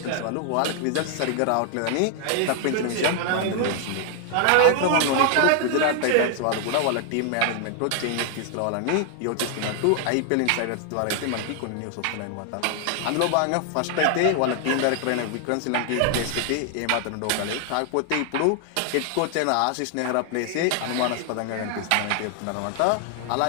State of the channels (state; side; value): different; both; correlation 0.00